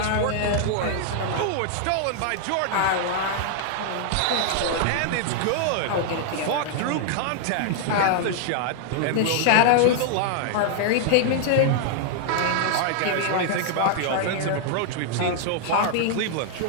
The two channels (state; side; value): different; both; correlation 0.00